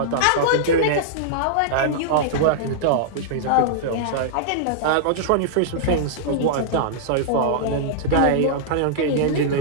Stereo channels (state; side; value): different; both; correlation -0.02